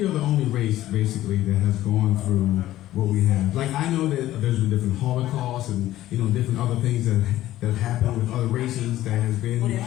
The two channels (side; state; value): right; quieter; 14.4 dB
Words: are the only race basically that has gone through what we have. Like, I know that there's been different Holocausts and, you know, different other things that have happened with other races that has been, Well, it you